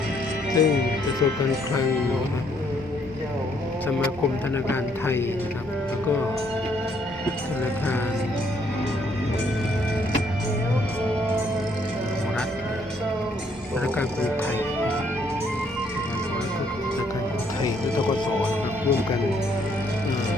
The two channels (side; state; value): both; normal; correlation 0.69